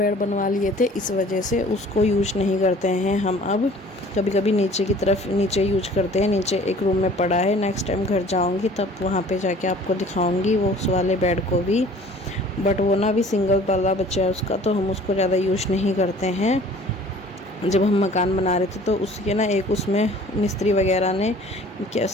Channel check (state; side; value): normal; both; correlation 0.50